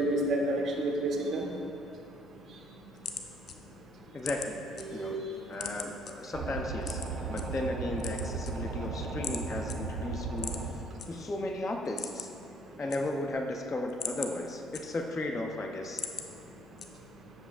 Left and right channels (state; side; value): noise; left; hum, 24 dB below the sound